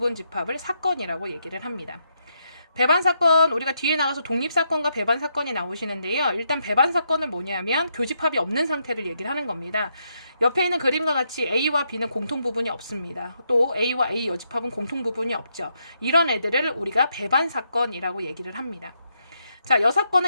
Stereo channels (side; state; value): both; inverted; correlation -0.79